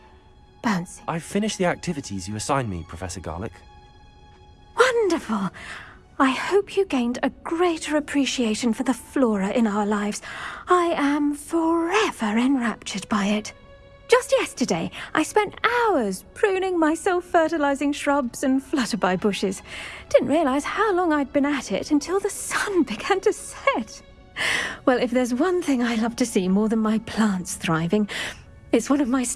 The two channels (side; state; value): both; identical; correlation 1.00